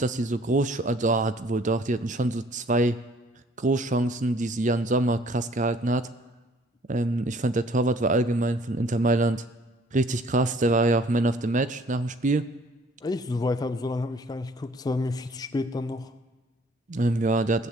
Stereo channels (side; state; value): both; normal; correlation 0.57